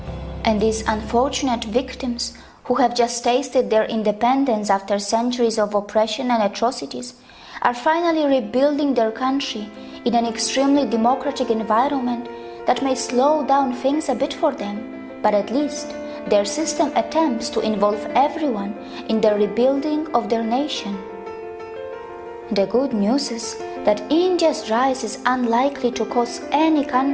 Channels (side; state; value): both; identical; correlation 1.00